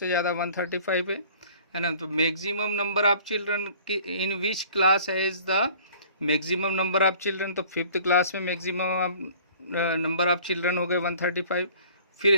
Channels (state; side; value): inverted; both; correlation -0.51